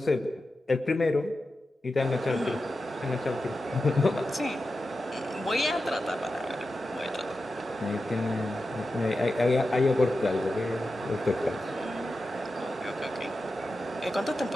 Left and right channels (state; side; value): normal; both; correlation 0.91